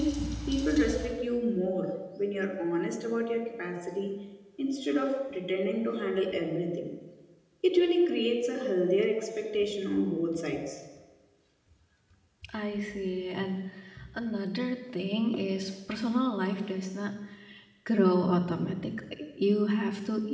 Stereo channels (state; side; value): identical; both; correlation 1.00